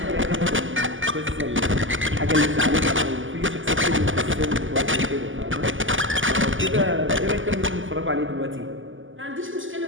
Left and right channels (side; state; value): left; late; 0.57 ms